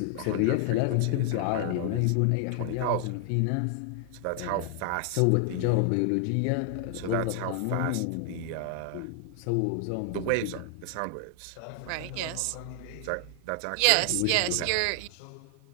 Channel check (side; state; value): both; different; correlation 0.00